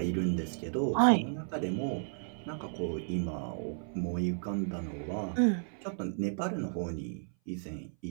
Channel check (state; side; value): silent; left; 55 dB below the other